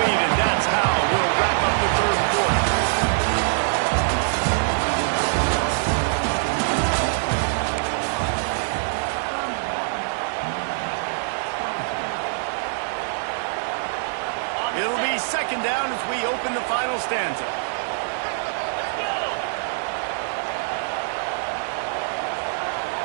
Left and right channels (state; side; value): silent; left; digital silence